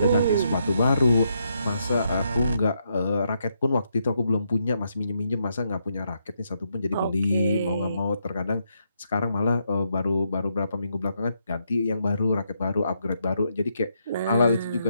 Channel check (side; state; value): both; inverted; correlation -0.78